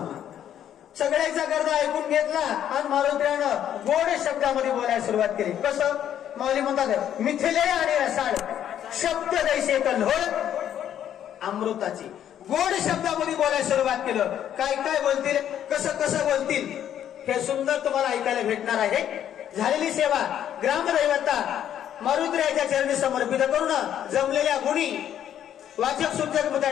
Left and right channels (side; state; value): right; quieter; 10.3 dB